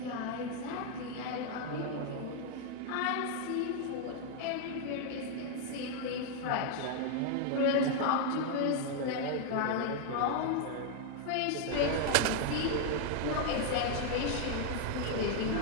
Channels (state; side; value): different; both; correlation 0.00